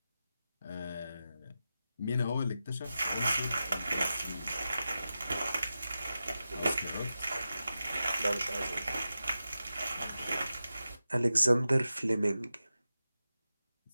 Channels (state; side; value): inverted; both; correlation -0.92